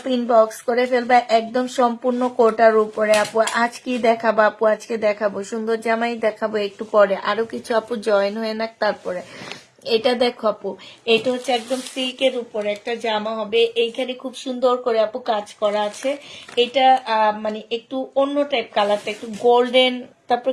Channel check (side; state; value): both; identical; correlation 1.00